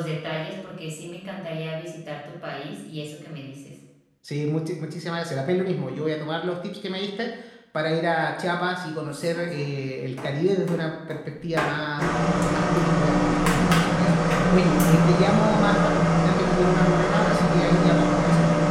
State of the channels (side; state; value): both; identical; correlation 1.00